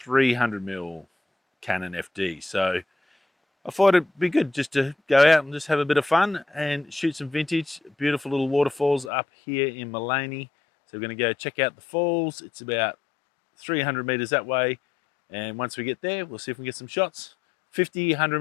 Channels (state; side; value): drops out; right; at 9.1 s